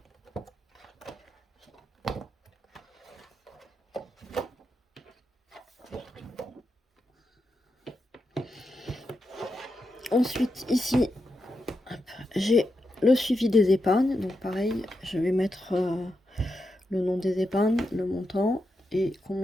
Ensuite, ici, j'ai le suivi des épargnes. Donc, pareil, je vais mettre le nom des épargnes, le montant et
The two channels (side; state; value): both; normal; correlation 0.86